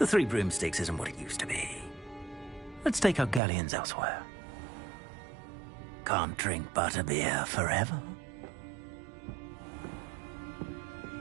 3 broomsticks isn't what it used to be. Let's take our galleons elsewhere. Can't drink butterbeer forever.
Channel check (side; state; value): left; drops out; at 3.4 s